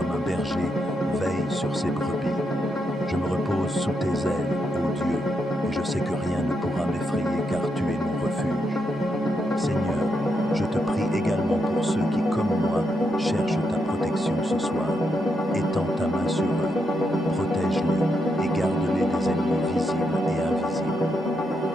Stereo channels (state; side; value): normal; both; correlation 0.81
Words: un berger veille sur ses brebis. Je me repose sous tes ailes, ô Dieu, et je sais que rien ne pourra m'effrayer car tu es mon refuge. Seigneur, je te prie également pour ceux qui, comme moi, cherchent ta protection ce soir. Étends ta main sur eux, protège-les et garde-les des ennemis visibles et invisibles.